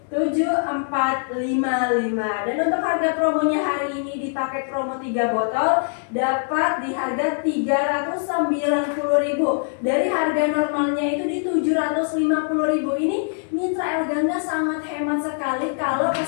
7455. Dan untuk harga promonya hari ini di paket promo 3 botol dapat di harga 390.000. Dari harga normalnya itu di 750.000. Ini mitra El Gangga sangat hemat sekali kalau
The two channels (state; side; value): silent; right; 64 dB below the other